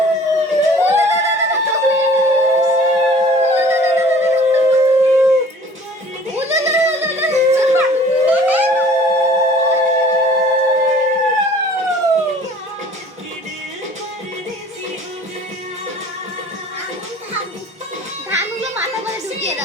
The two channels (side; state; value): both; normal; correlation 0.50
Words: ধানগুলো মাথা করে ঢুকিয়ে